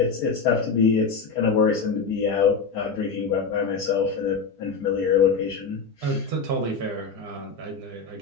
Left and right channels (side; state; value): right; quieter; 5.1 dB